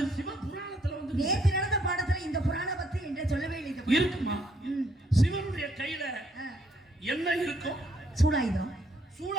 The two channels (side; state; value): both; normal; correlation 0.69